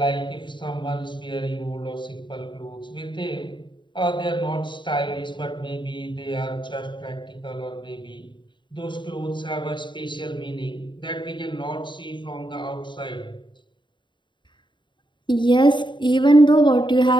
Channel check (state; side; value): late; right; 0.23 ms